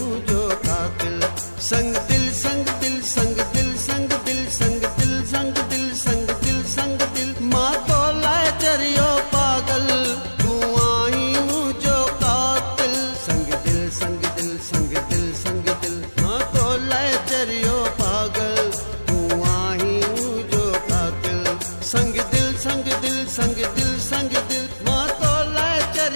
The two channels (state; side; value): inverted; both; correlation -1.00